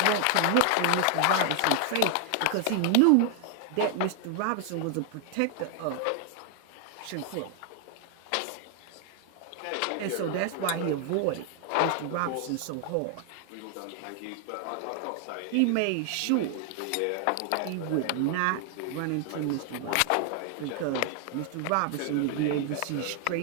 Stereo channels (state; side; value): different; both; correlation 0.00